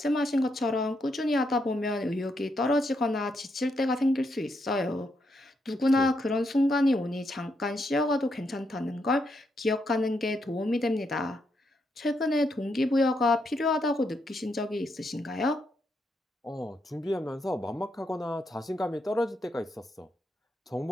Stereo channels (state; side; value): normal; both; correlation 0.79